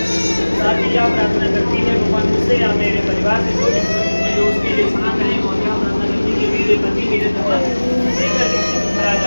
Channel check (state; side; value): inverted; both; correlation -1.00